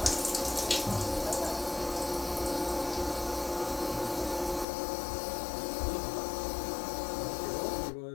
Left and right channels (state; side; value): drops out; right; at 4.7 s